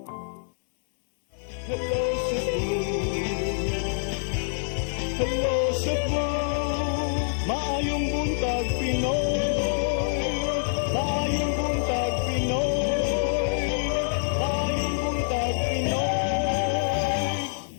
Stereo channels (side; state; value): right; silent; 61 dB below the other